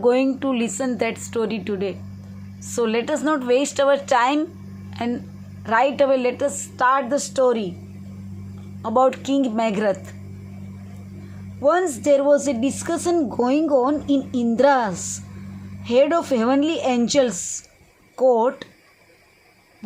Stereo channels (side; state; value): both; identical; correlation 1.00